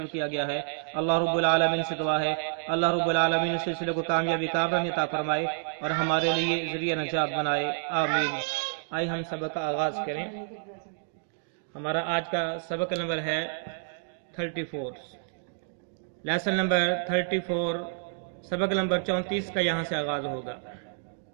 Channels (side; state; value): left; silent; digital silence